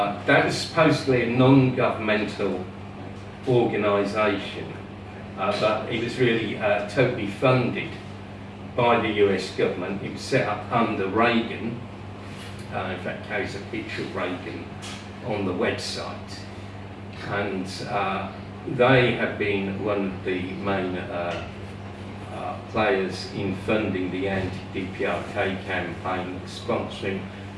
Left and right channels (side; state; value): both; identical; correlation 1.00